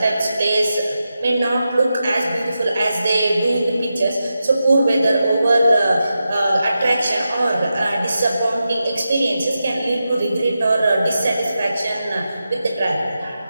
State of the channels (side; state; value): both; inverted; correlation -0.90